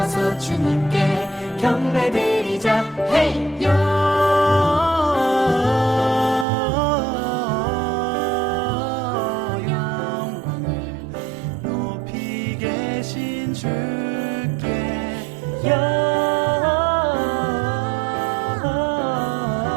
주님께 경배드리자. 헤이요. 영광을 높이 계신 주께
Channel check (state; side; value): drops out; left; at 6.5 s